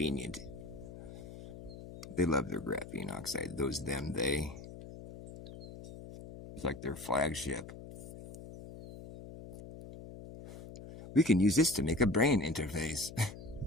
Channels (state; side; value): noise; left; hum, 14 dB below the sound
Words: They love their graphene oxide. Those, them, they. It's like their flagship. We can use this to make a brain interface.